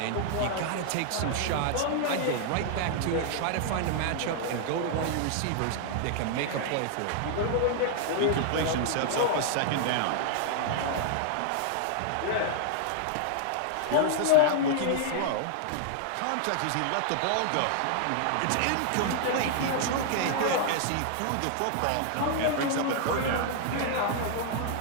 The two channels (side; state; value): both; different; correlation -0.01